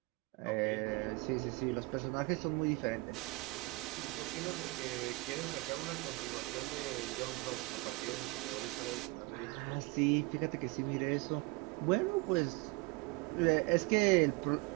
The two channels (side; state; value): left; quieter; 24.5 dB